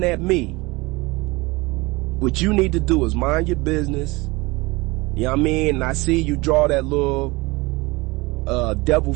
at me? What you need to do is mind your business. You know what I mean? And I see you draw that little devil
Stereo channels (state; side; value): quieter; left; 23.5 dB